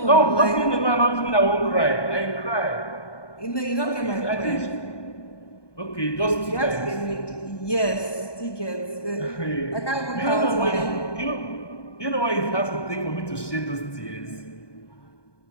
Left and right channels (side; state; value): right; late; 1.2 ms